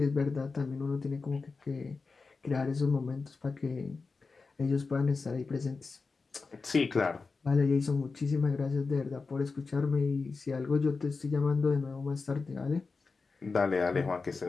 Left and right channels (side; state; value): right; quieter; 4.3 dB